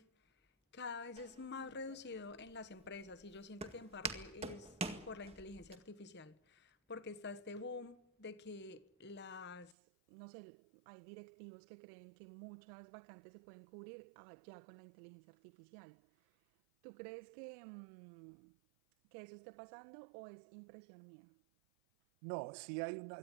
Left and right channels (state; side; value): drops out; left; at 9.8 s